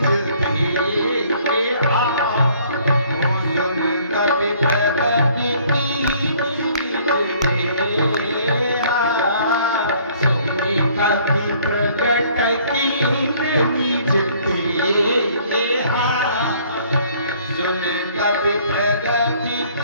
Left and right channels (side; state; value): both; inverted; correlation -0.59